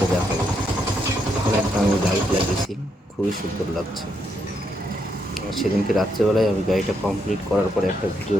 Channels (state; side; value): normal; both; correlation 0.78